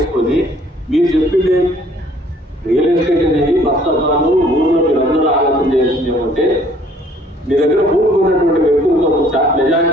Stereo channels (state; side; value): normal; both; correlation 0.58